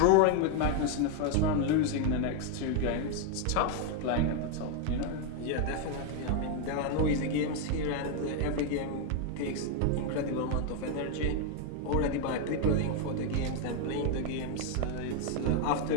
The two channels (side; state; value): both; different; correlation 0.01